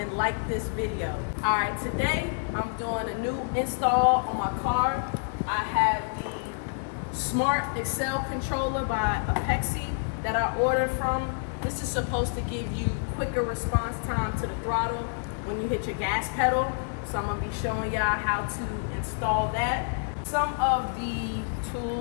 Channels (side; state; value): right; silent; 56 dB below the other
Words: like this video. All right, today I'm doing a new install on my car. I have the Smart Accel controller by APEXi that I ordered from. This is supposed to give you quicker response time to the throttle when you hit your gas pedal. So I'm gonna be showing y'all how to install that. Some of the